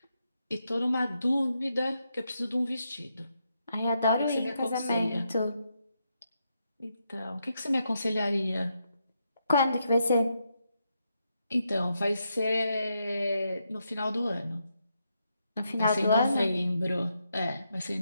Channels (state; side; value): inverted; both; correlation -0.82